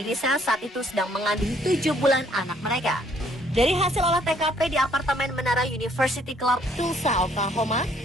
saat itu sedang mengandung 7 bulan anak mereka. Dari hasil olah TKP di apartemen Menara University Club, Tulsa, Oklahoma,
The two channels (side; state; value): both; normal; correlation 0.64